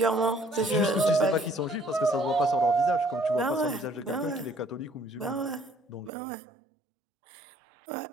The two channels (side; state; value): left; drops out; at 6.1 s